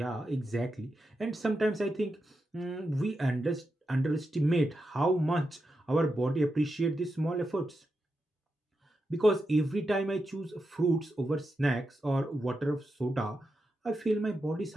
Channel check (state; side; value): normal; both; correlation 0.87